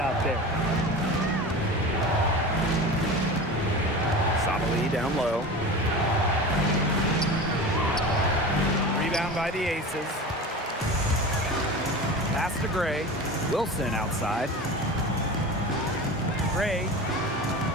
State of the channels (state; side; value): normal; both; correlation 0.31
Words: there. Sabali down low. Rebound by the aces. Pass to Gray. Wilson outside. Gray.